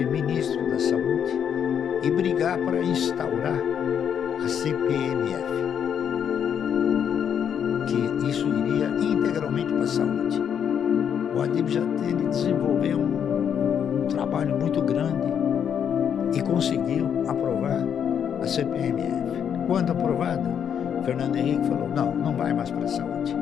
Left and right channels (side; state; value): right; quieter; 8.3 dB